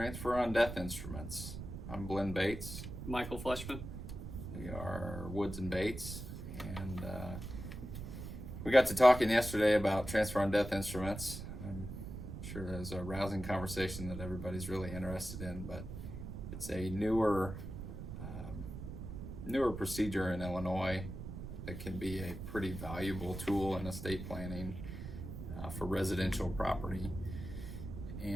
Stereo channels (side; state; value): right; noise; rumble, 8 dB below the sound